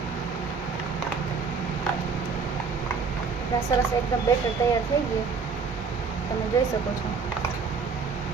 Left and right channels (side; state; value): left; quieter; 5.1 dB